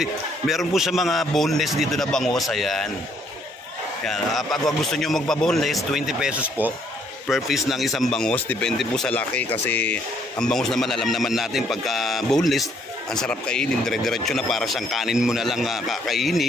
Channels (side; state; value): both; normal; correlation 0.67